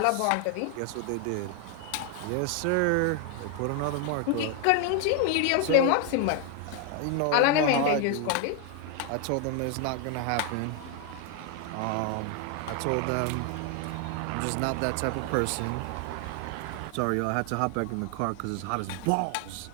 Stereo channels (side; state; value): both; different; correlation 0.00